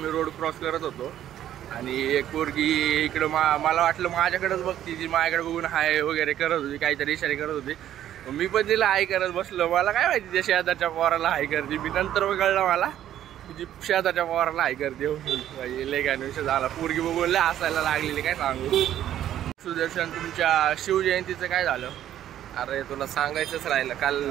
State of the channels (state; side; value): quieter; left; 11.5 dB